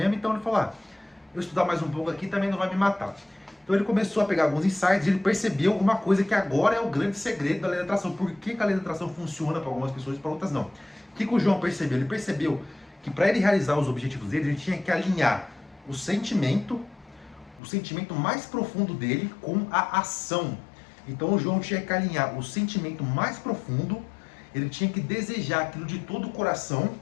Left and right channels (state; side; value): drops out; right; at 17.6 s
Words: então ele falou, eu estudar mais um pouco aqui também não vai me matar. Então ele começou a pegar alguns insights e ele percebeu uma coisa que agora é o grande segredo da lei da atração. Por que a lei da atração funciona para algumas pessoas e para outras não? O que o João percebeu? Ele percebeu que para ele realizar os objetivos dele, ele tinha que alinhar o sentimento mais profundo dele com a ação. Então o João tinha que alinhar o sentimento mais profundo, ele tinha que desejar aquilo de todo o coração,